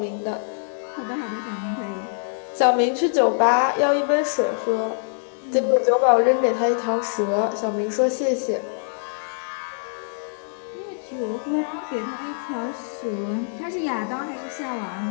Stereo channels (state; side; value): silent; right; 63 dB below the other